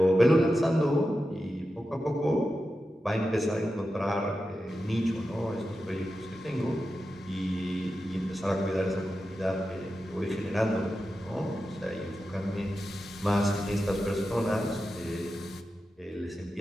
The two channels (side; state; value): both; normal; correlation 0.91